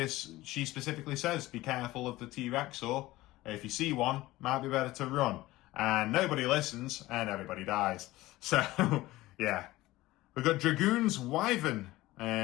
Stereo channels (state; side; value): quieter; right; 17.9 dB